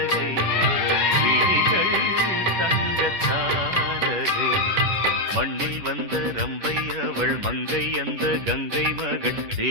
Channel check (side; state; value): left; late; 10 ms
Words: விழிகள் தங்கத்தாரகை மண்ணில் வந்த ரம்பை அவள் மங்கை அந்த கங்கை மகள்